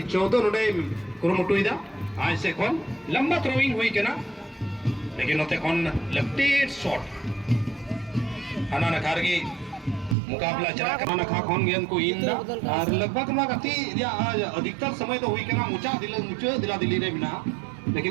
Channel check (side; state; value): left; drops out; at 10.2 s